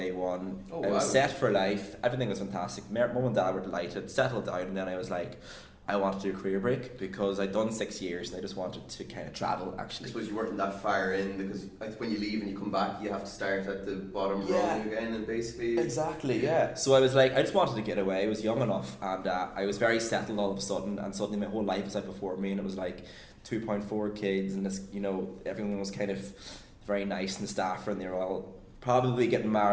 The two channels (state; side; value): identical; both; correlation 1.00